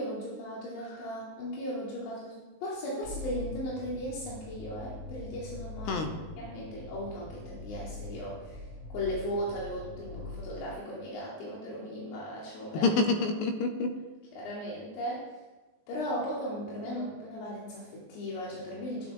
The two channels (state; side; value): late; right; 19 ms